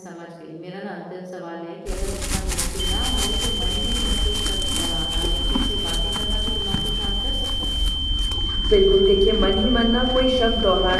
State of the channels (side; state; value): both; identical; correlation 1.00